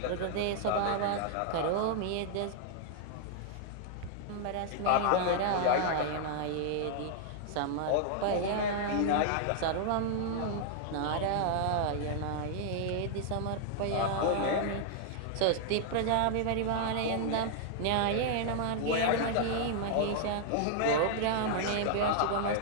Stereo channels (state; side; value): different; both; correlation -0.01